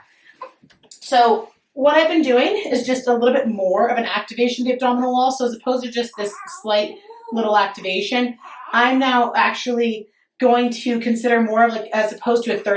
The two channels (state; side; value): identical; both; correlation 1.00